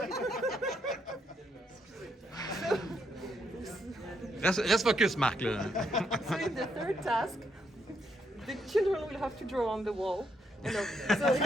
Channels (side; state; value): both; normal; correlation 0.76